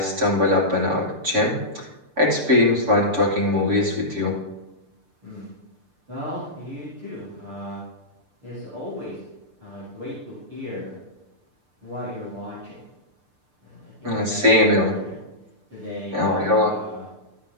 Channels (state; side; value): late; left; 6.7 ms